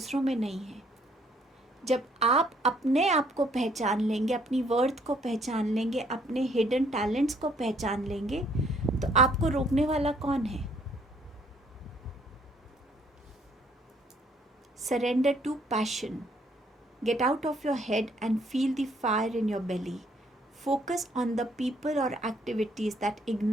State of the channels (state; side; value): normal; both; correlation 0.65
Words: में नहीं है। जब आप अपने आप को पहचान लेंगे, अपनी वर्थ को पहचान लेंगे, अपने हिडन टैलेंट्स को पहचान लेंगे, तो आपको रोकने वाला कौन है? Surrender to passion. Get out of your head and feel the fire in your belly. Focus on the people or activities that